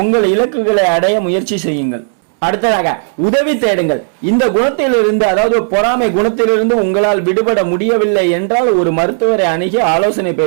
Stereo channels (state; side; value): silent; left; 70 dB below the other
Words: உங்கள் இலக்குகளை அடைய முயற்சி செய்யுங்கள். அடுத்ததாக உதவி தேடுங்கள். இந்த குணத்திலிருந்து, அதாவது பொறாமை குணத்திலிருந்து உங்களால் விடுபட முடியவில்லை என்றால் ஒரு மருத்துவரை அணுகி ஆலோசனை